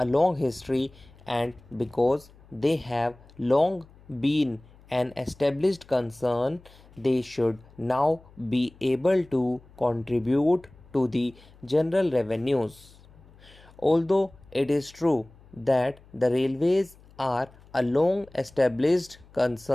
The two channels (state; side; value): noise; left; hum, 25 dB below the sound